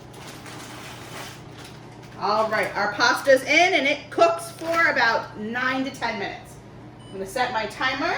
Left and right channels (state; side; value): identical; both; correlation 1.00